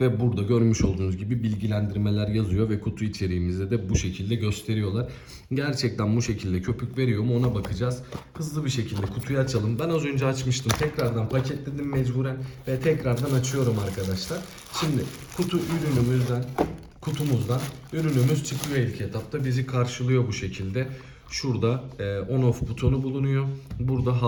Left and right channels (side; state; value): both; identical; correlation 1.00